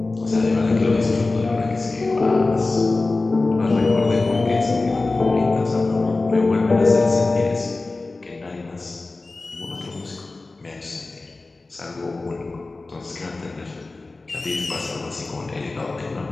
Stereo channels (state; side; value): quieter; right; 3.4 dB